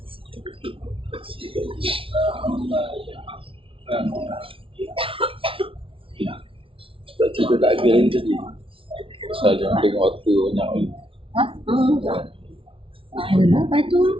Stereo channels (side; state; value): left; late; 0.26 ms